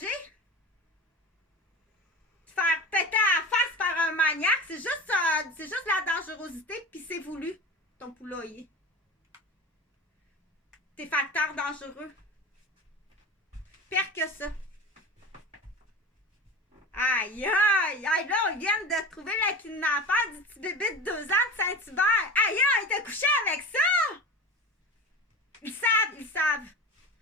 Faire péter à la face par un maniaque, c'est juste la dangerosité, puis c'est voulu, ton poulailler. Tes facteurs dangereux. Pire que ça. Aïe, aïe, aïe, là, on vient de trouver le kidnappeur du petit bébé de 2 ans de Saint-Hubert. Aïe, il t'a couché avec ça! Ils savent.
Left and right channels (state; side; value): normal; both; correlation 0.31